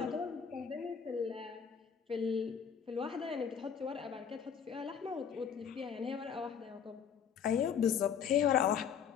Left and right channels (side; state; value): right; quieter; 7.5 dB